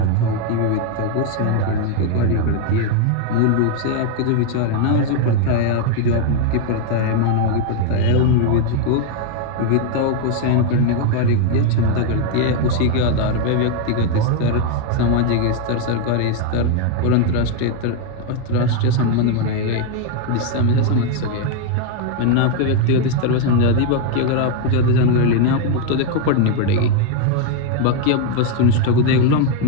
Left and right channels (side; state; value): both; different; correlation 0.01